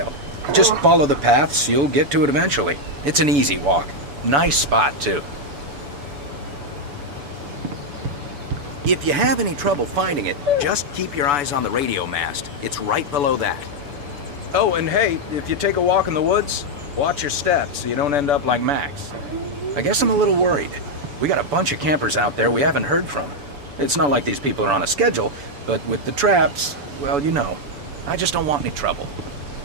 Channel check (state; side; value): late; left; 7.0 ms